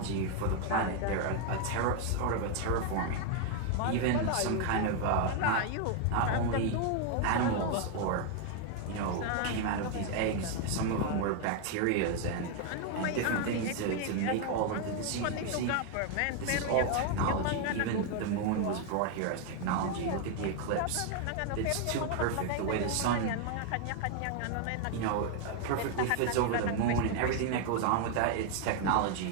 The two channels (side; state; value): both; different; correlation 0.01